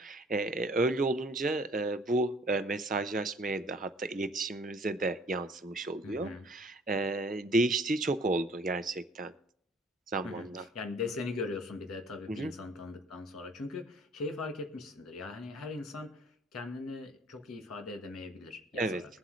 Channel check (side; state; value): both; normal; correlation 0.56